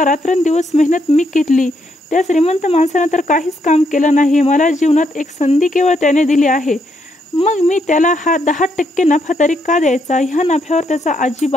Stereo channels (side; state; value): both; normal; correlation 0.76